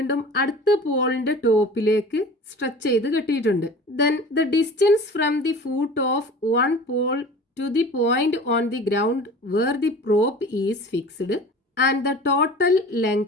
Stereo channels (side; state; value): both; normal; correlation 0.40